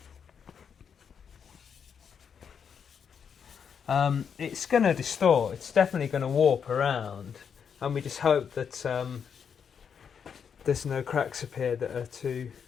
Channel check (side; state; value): right; quieter; 7.1 dB